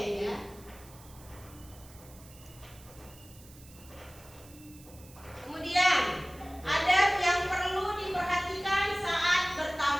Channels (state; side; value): noise; right; hiss, 22 dB below the sound